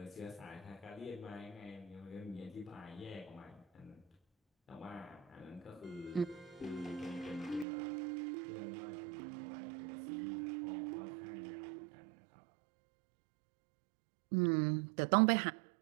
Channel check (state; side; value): drops out; left; at 7.7 s